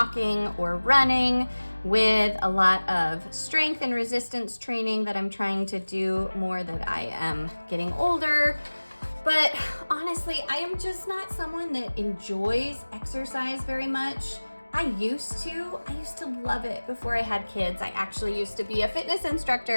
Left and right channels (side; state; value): both; inverted; correlation -1.00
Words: or running with a lot of strength and resistance training that I'm trying to do more that I am getting older. But honestly, I am just not someone that enjoys exercise very much. I used to love it before I had kids. I actually used to be a fitness